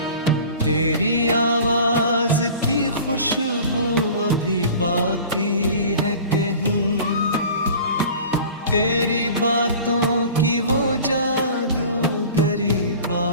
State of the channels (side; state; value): both; inverted; correlation -0.42